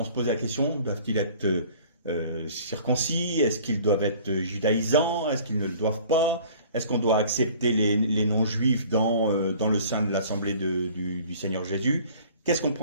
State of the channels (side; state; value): both; inverted; correlation -0.50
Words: se pose la question, doivent-ils être circoncis? Est-ce qu'ils doivent être judaïsants? Est-ce qu'ils ne le doivent pas? Est-ce qu'on doit accepter les non-juifs dans le sein de l'assemblée du Seigneur Jésus? Qu'est-ce qu'on